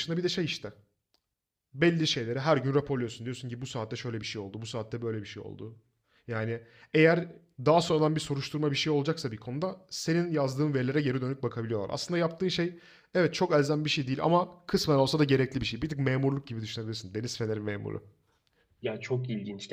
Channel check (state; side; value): identical; both; correlation 1.00